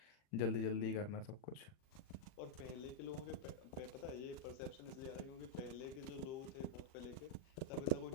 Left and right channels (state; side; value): late; right; 40 ms